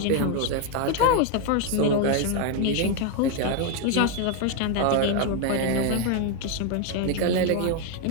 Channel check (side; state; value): both; different; correlation 0.01